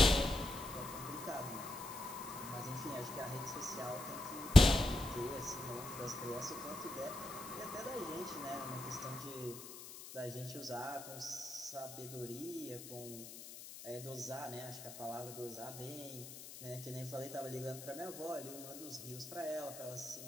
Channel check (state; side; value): noise; left; hiss, 12 dB below the sound